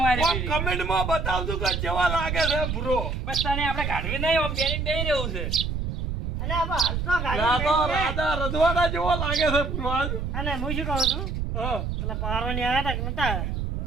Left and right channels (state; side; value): noise; right; rumble, 2 dB below the sound